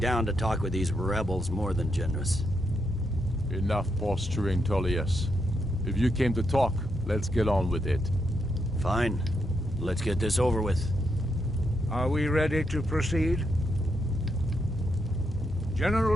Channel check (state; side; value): normal; both; correlation 0.80